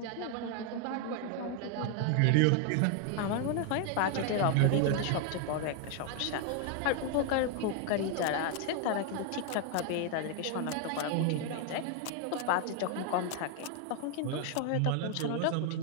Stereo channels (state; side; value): different; both; correlation 0.00